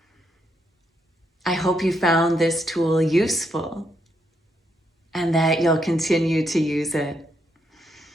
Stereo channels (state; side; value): normal; both; correlation 0.78